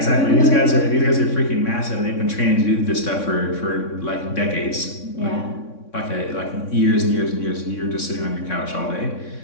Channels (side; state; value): right; late; 3.6 ms